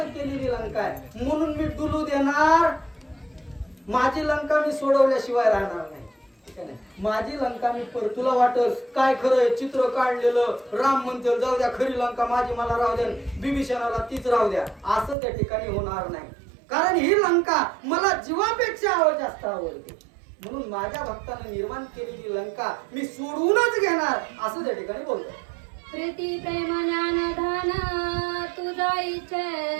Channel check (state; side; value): drops out; left; at 15.2 s